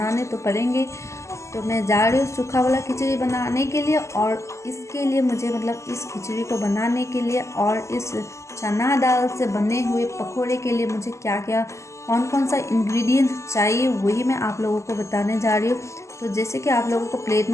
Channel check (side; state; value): right; late; 0.14 ms